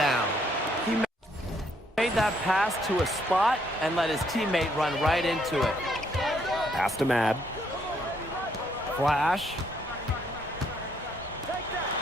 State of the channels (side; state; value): both; normal; correlation 0.70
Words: He made that pass to a spot and let his teammate run right into it. Pass to Mad. Flash.